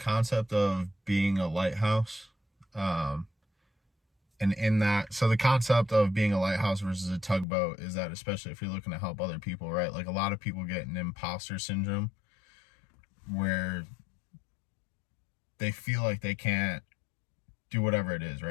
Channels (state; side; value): drops out; right; at 7.5 s